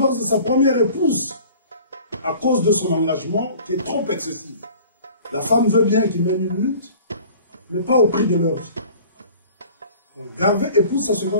de sa première épouse à cause de son engagement qui est trop excessif. La femme veut bien qu'il mène une lutte, mais pas au prix de leur vie. Donc Garvey épouse sa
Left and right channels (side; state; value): both; inverted; correlation -0.47